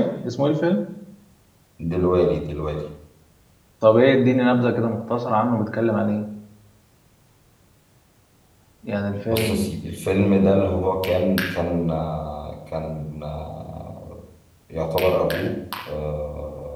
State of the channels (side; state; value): both; identical; correlation 1.00